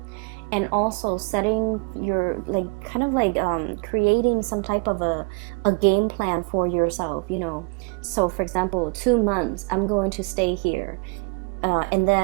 And also setting your, like, kind of like creating some type of a game plan for yourself, you know. So for example, 2 months I'm going to stay here, and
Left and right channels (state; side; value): quieter; left; 34.8 dB